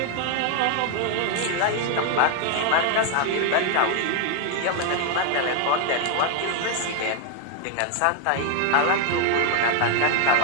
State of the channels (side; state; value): both; different; correlation 0.00